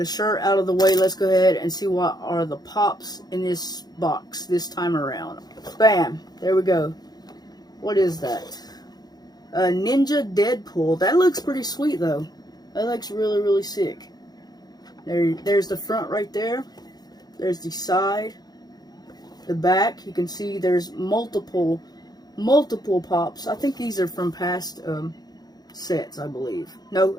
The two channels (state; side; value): late; right; 0.19 ms